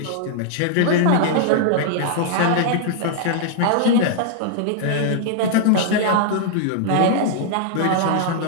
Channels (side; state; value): both; different; correlation -0.01